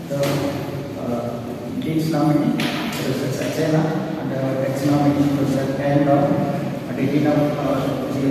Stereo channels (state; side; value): identical; both; correlation 1.00